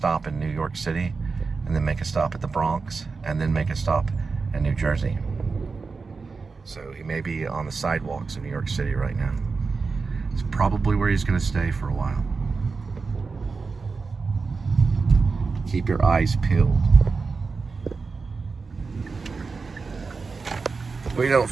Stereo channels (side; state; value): left; quieter; 4.5 dB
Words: in New York City, and then make a stop at the Bronx, and then make a stop in New Jersey. So he may be on the sidewalks of New York City right now. It's probably where he's going to stay for a while. Keep your eyes peeled. We don't